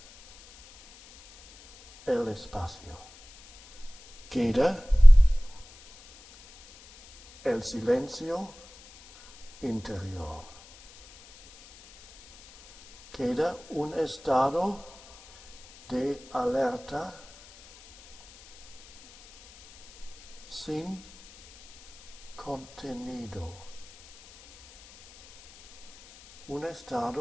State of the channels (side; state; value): left; noise; hiss, 24 dB below the sound